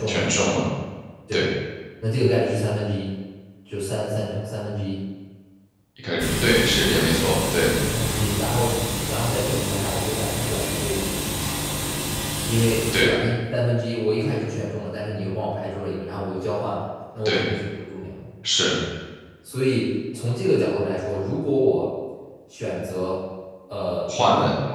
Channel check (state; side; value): identical; both; correlation 1.00